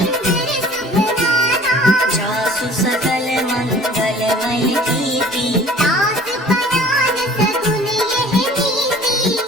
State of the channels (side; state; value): both; normal; correlation 0.49